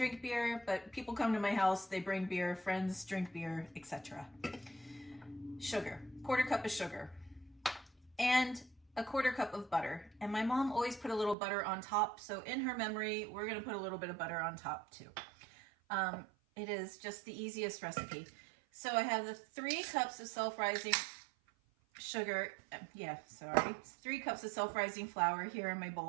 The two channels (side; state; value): left; drops out; at 11.4 s